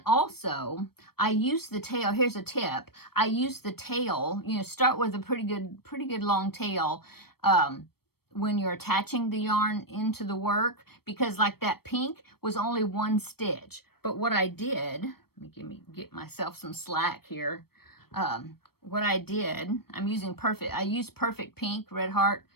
also, I use the tail. Here's a tip. I use the tail, start with a pretty good long tail when you're attaching the yarn into the work, because like that pink was only one stitch. But what I did, let me get myself some slack here. What I did, I used Perfect Pink, Red Heart,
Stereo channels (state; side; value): late; right; 0.95 ms